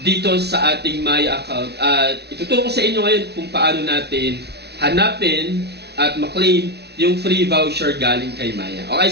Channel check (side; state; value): left; late; 0.49 ms